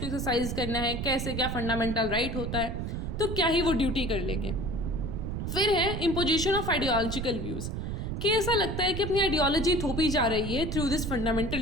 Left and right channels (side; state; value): right; noise; rumble, 4 dB below the sound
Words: एक्सरसाइज करना है, कैसे क्या फंडामेंटल राइट होता है, तो क्या ही वो ड्यूटी कर लेंगे। फिर है इम्पोजिशन ऑफ आइडियोलॉजिकल व्यूज़, कि ऐसा लगता है कि अपनी आइडियोलॉजी थोपी जा रही है थ्रू दिस